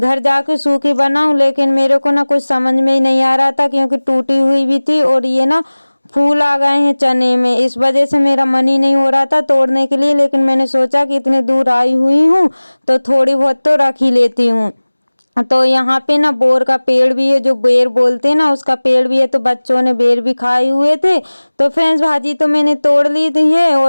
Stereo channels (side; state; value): both; inverted; correlation -1.00